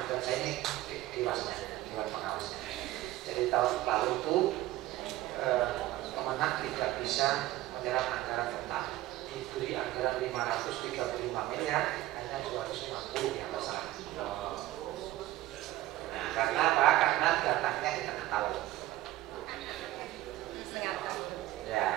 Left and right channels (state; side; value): quieter; left; 16.1 dB